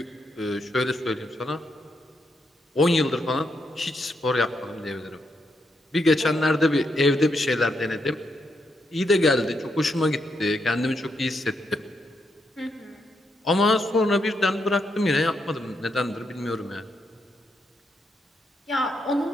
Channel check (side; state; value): both; normal; correlation 0.80